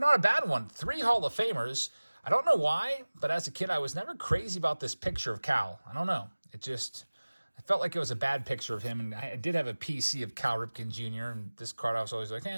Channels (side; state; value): both; inverted; correlation -1.00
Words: a bad one. 3 Hall of Famers. I don't know why, but as a kid, I was never crazy about this picture of Cal. I don't know. I felt like it was a bad picture of him, and I did have a PC of Cal Ripken Jr., and this card I was always like,